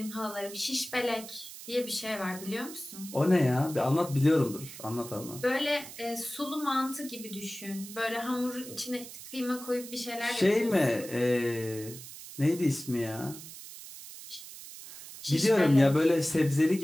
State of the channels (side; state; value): right; noise; hiss, 14 dB below the sound